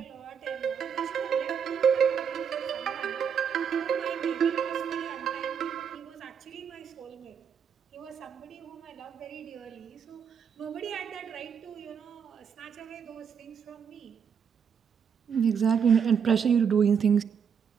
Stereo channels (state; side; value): quieter; left; 7.2 dB